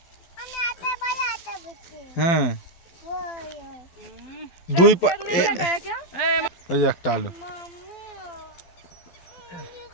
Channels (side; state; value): right; late; 12 ms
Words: হ্যাঁ, দুই ওই যে একটা আলু।